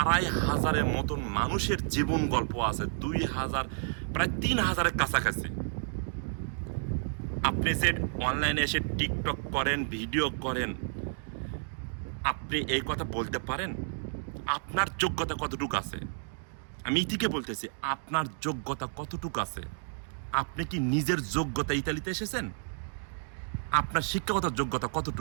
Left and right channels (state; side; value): silent; left; digital silence